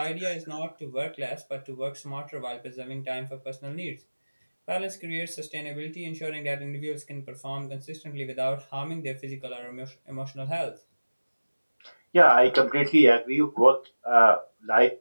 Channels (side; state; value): both; inverted; correlation -1.00